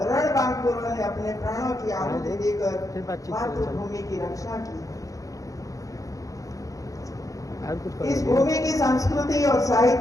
ने अपने प्राणों की आहुति देकर मातृभूमि की रक्षा की। इस भूमि की संस्कृति और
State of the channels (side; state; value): right; late; 0.16 ms